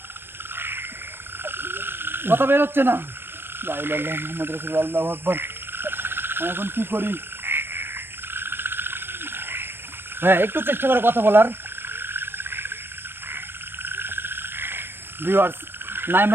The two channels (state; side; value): late; left; 0.10 ms